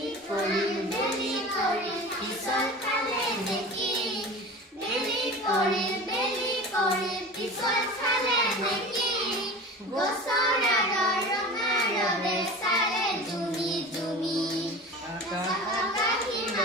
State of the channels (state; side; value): normal; both; correlation 0.34